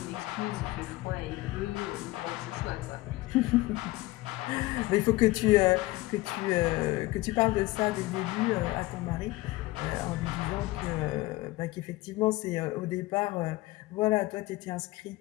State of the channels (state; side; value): quieter; right; 19.3 dB